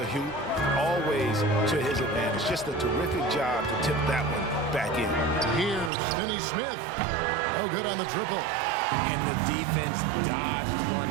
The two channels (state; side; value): drops out; left; at 5.9 s